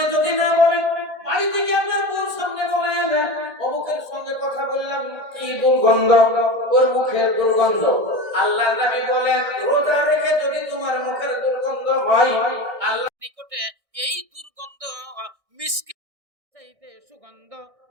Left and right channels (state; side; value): late; left; 1.6 ms